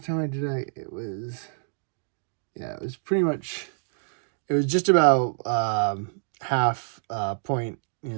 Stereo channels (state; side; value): silent; left; digital silence